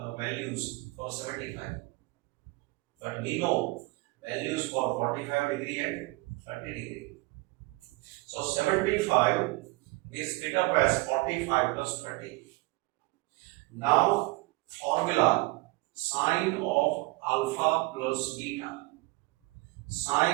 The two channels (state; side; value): quieter; left; 23.4 dB